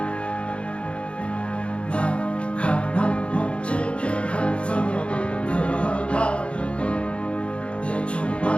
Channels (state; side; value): late; right; 0.059 ms